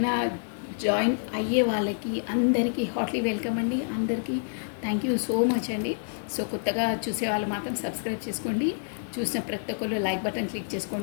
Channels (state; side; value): silent; right; 59 dB below the other